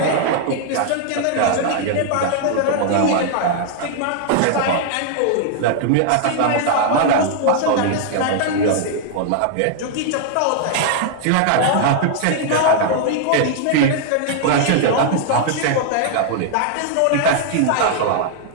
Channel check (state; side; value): different; both; correlation -0.01